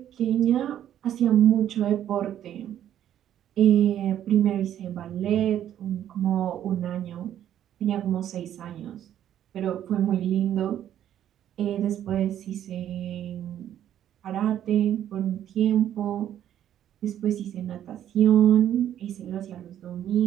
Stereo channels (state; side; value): quieter; left; 10.9 dB